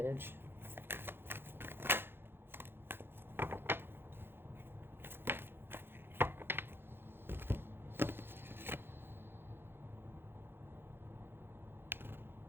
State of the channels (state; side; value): late; left; 0.10 ms